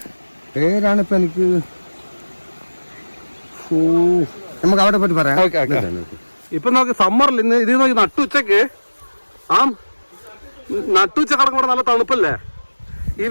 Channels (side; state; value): both; inverted; correlation -1.00